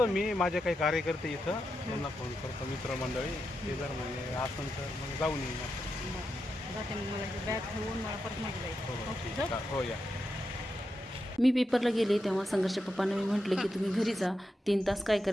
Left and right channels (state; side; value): normal; both; correlation 0.87